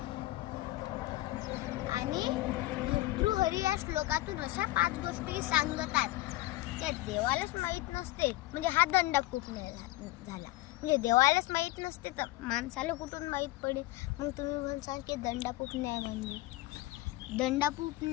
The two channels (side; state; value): right; quieter; 18.2 dB